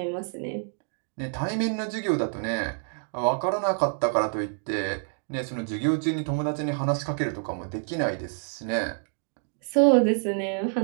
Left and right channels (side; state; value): left; silent; 60 dB below the other